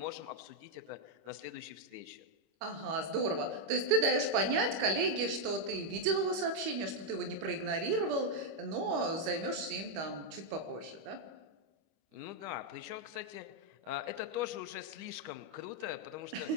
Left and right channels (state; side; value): late; left; 25 ms